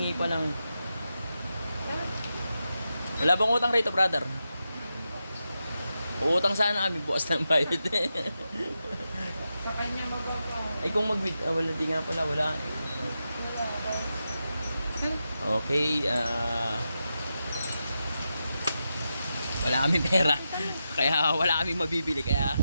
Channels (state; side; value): inverted; both; correlation -0.89